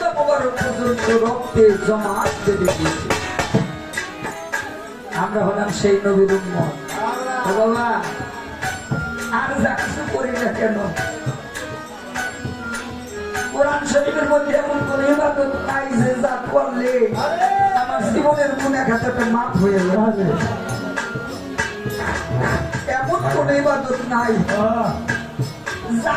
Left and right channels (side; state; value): both; identical; correlation 1.00